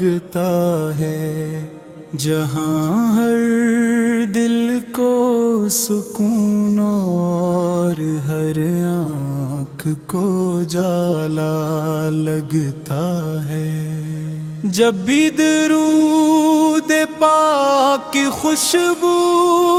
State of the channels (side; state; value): both; identical; correlation 1.00